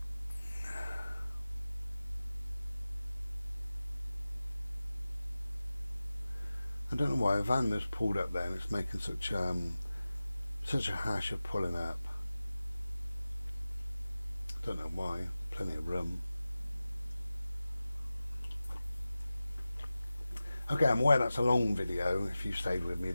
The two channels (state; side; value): inverted; both; correlation -0.96